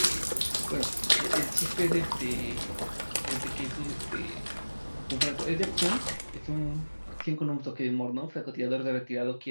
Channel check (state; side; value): inverted; both; correlation -1.00